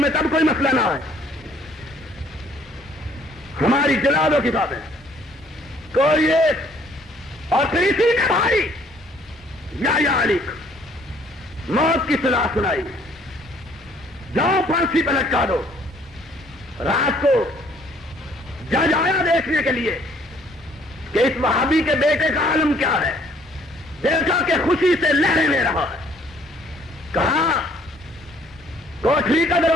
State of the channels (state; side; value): normal; both; correlation 0.61